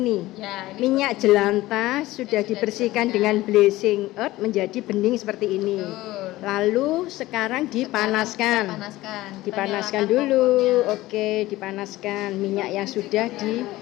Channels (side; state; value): right; quieter; 17.5 dB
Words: Ya, ini Minyak jelantah sudah dibersihkan dengan bleaching earth menjadi bening seperti ini. Lalu sekarang dipanaskan. Dipanaskan dulu. Oke, dipanaskan minyak yang sudah